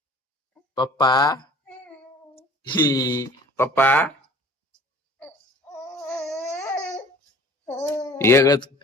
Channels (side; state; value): both; normal; correlation 0.48